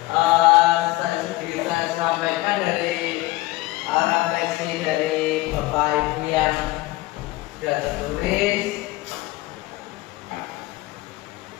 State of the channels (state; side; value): quieter; right; 19.1 dB